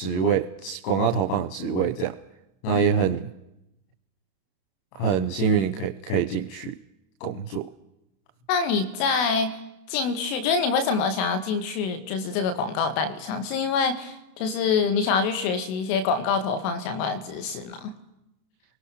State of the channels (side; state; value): right; late; 32 ms